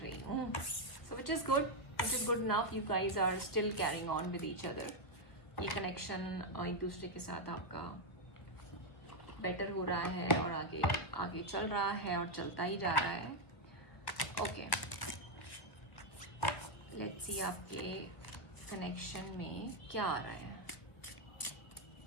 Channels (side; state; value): right; late; 1.5 ms